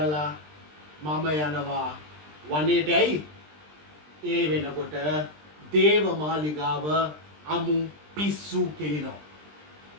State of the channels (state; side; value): late; left; 20 ms